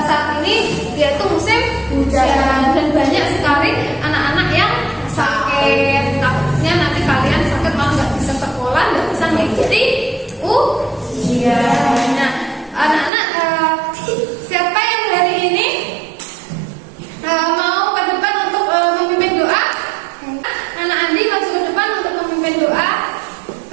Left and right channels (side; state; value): left; drops out; at 13.1 s